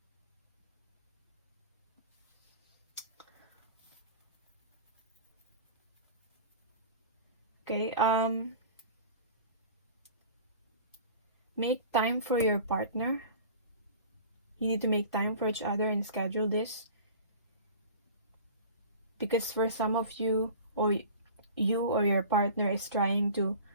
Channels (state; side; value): inverted; both; correlation -0.40